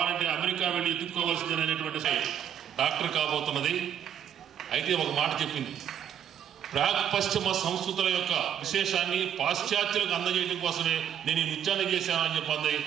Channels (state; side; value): quieter; left; 9.3 dB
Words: అమెరికా వెళ్ళి ఎదుర్కోవాల్సింది అనేటువంటి డాక్టర్ కాబోతున్నది. అయితే ఒక మాట చెప్పింది, ప్రాక్ పశ్చిమ సంస్కృతుల యొక్క విశేషాన్ని పాశ్చాత్యులకు అందజేయడం కోసమే నేను ఈ నృత్యాన్ని చేశానని చెప్పింది.